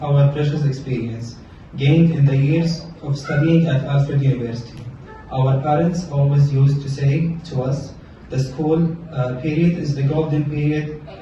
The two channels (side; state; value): both; identical; correlation 1.00